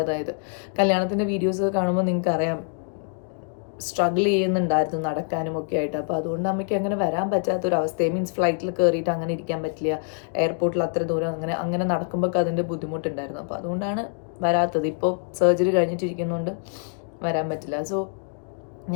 കല്യാണത്തിൻ്റെ വീഡിയോസ് കാണുമ്പോൾ നിങ്ങൾക്ക് അറിയാം, സ്ട്രഗിൾ ചെയ്യുന്നുണ്ടായിരുന്നു നടക്കാനും ഒക്കെ ആയിട്ട്. അപ്പോൾ അതുകൊണ്ട് അമ്മയ്ക്ക് അങ്ങനെ വരാൻ പറ്റാത്തൊരവസ്ഥയെ, മീൻസ് ഫ്ലൈറ്റിൽ കയറിയിട്ട് അങ്ങനെ ഇരിക്കാൻ പറ്റില്ല, എയർപോർട്ടിൽ അത്ര ദൂരം അങ്ങനെ നടക്കുമ്പോൾ അതിൻ്റെ ബുദ്ധിമുട്ടുണ്ടായിരുന്നു. അപ്പോൾ അതുകൊണ്ടാണ് വരാത്തത്. ഇപ്പോൾ സർജറി കഴിഞ്ഞിട്ടിരിക്കുന്നതുകൊണ്ട് വരാൻ പറ്റില്ല. സോ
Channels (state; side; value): silent; right; 62 dB below the other